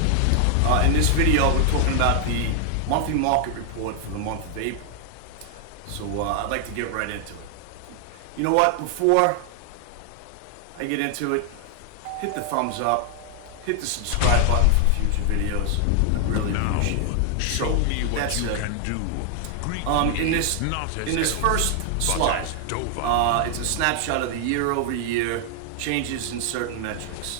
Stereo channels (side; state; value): both; different; correlation 0.00